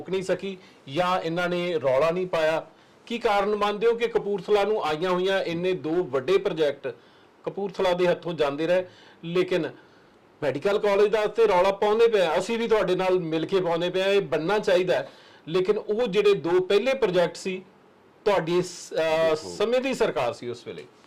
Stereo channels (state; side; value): identical; both; correlation 1.00